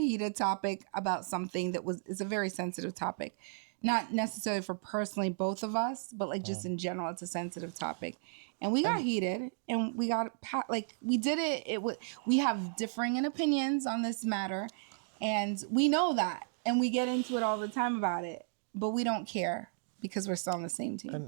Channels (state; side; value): silent; left; digital silence